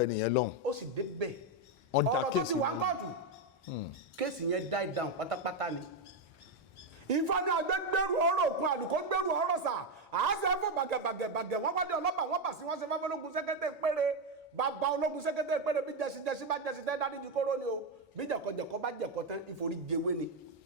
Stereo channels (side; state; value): both; normal; correlation 0.06